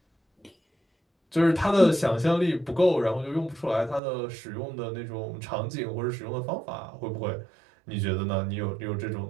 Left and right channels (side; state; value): left; drops out; at 4.0 s